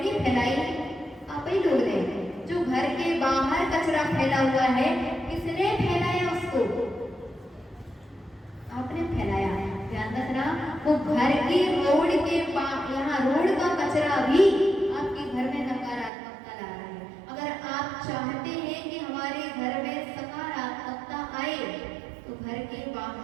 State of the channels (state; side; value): drops out; left; at 16.1 s